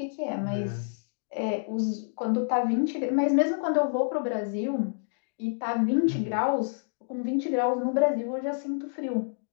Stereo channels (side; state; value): right; silent; digital silence